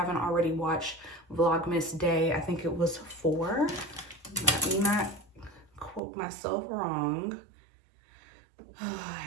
already watched Vlogmas Day, I think it was 4. Let me not quote myself wrong. I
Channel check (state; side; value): drops out; left; at 6.0 s